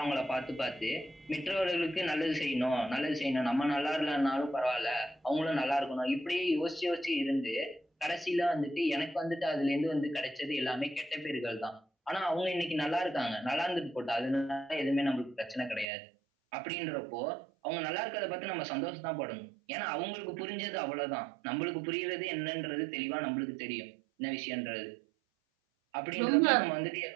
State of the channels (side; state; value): left; drops out; at 15.9 s